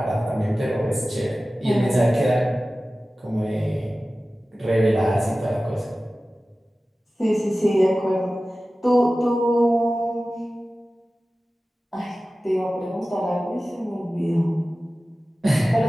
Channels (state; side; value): normal; both; correlation 0.96